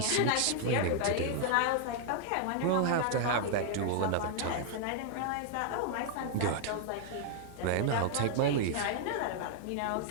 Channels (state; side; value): different; both; correlation -0.01